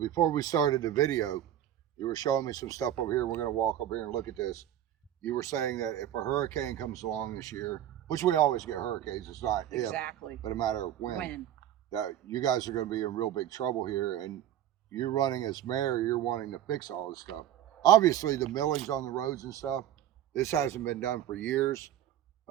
we started the video, you were showing me some stuff over here. We're going to walk over here and look at this. You were saying that if a hurricane comes along this year, which we always get hurricanes, it's not exactly, but a matter of when, that you guys are going to be in real big trouble here. And you're running as mayor, you're wanting to fix all this stuff. Obviously the millings on the roads and stuff, this hasn't been done for years.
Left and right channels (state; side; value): quieter; left; 11.4 dB